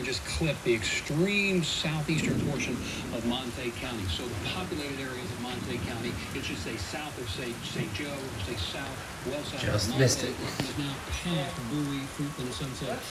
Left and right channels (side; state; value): both; identical; correlation 1.00